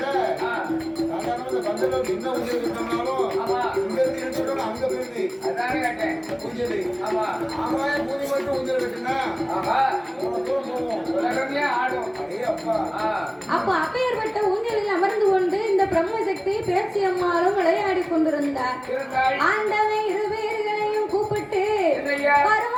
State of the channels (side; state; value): both; identical; correlation 1.00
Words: அப்ப அப்பேற்பட்ட ஊஞ்சலில் அமர்ந்து கொண்டு இந்த பிரம்மசக்தி பேச்சி அம்மாளும் விளையாடி கொண்டிருந்தார். ஆண்டவன் இரு பேர்களையும் கூப்பிட்டு